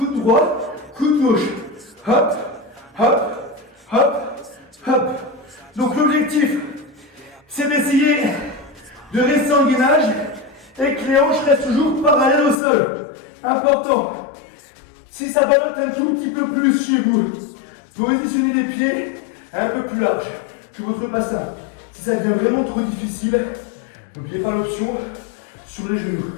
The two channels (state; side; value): drops out; right; at 12.6 s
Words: droit, coude gauche. Hop, hop, hop, hop. Donc l'objectif, c'est d'essayer de rester en gainage et que les hanches restent toujours parallèles au sol. Important. Si ça ballotte un tout petit peu plus chez vous, positionnez les pieds un peu plus large que votre bassin. Si ça devient vraiment trop difficile, n'oubliez pas l'option sur les genoux.